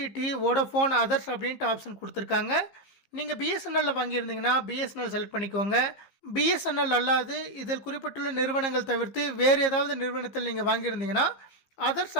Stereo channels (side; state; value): right; late; 15 ms